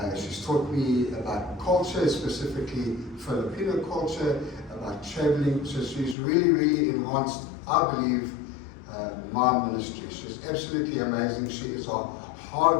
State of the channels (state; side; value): drops out; right; at 6.2 s